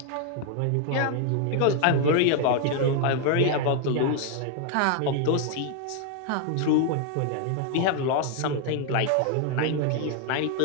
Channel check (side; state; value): both; different; correlation 0.01